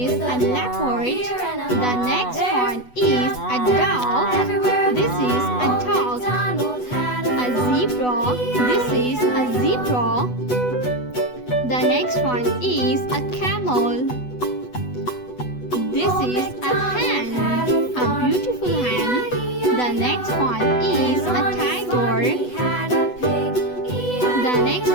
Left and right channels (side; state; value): right; late; 8.1 ms